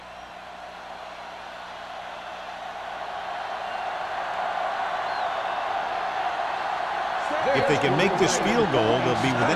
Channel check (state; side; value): identical; both; correlation 1.00